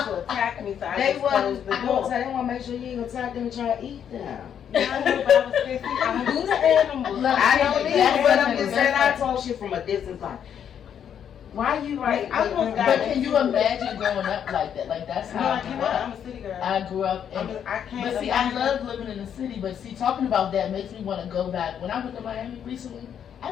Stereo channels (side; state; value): right; quieter; 8.7 dB